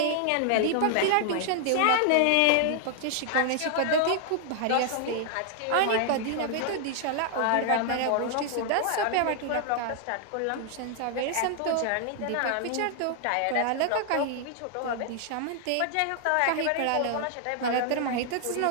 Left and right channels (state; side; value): different; both; correlation 0.00